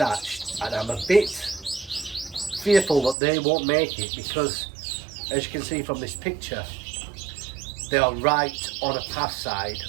and I'm a bit fearful that they won't make it because, as you can see from this picture, they are right on a path side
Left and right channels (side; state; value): left; drops out; at 3.2 s